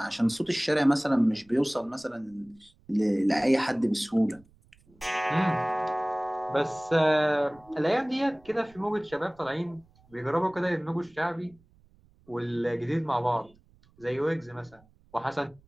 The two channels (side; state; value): right; noise; rumble, 30 dB below the sound